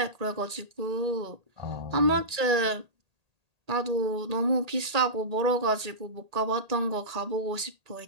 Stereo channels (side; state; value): left; late; 1.8 ms